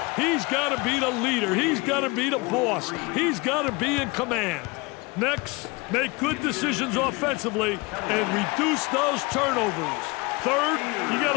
He's got to be the leader. He's got to be the boss. He's got to be in command. Next, make good decisions offensively and reduce those turnovers. Third, you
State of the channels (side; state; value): right; quieter; 25.6 dB